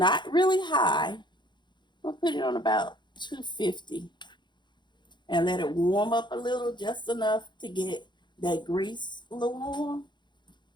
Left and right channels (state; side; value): late; right; 0.22 ms